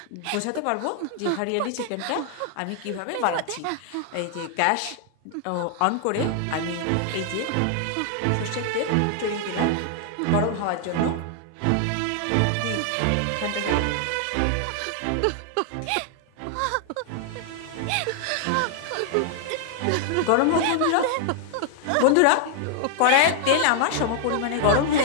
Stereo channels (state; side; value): different; both; correlation 0.00